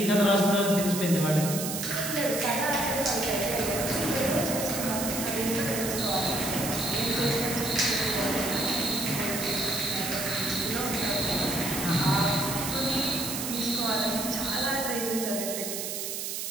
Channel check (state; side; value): noise; right; hiss, 4 dB below the sound